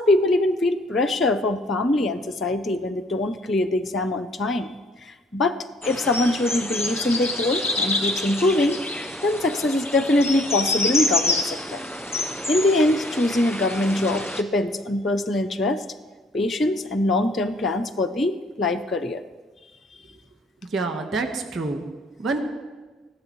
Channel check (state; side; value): normal; both; correlation 0.59